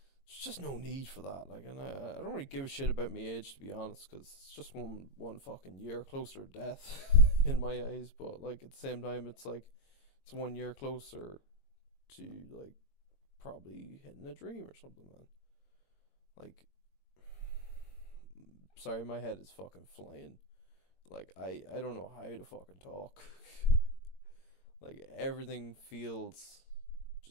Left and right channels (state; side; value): late; right; 22 ms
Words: there's just no need for that. Like, and I don't really give a shit about my age to be honest, because it's just one fucking year closer to death in my eyes. But like at the same time, it's like it's 1 year closer to like probably hitting a dream or something, man. Like, sorry, my head is fucking flying. Like I don't know how to fucking talk. Like everything feels